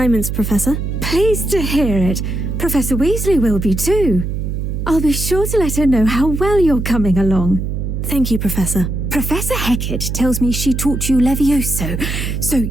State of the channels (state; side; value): noise; right; hum, 3 dB below the sound